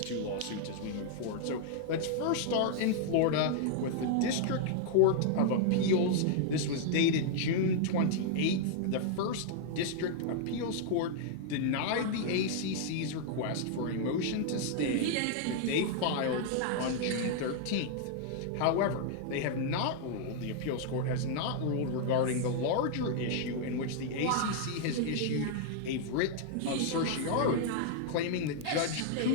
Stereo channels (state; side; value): different; both; correlation -0.01